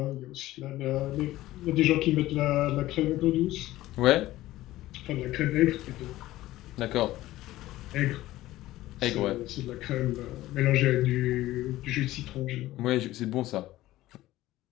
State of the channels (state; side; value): quieter; right; 16.1 dB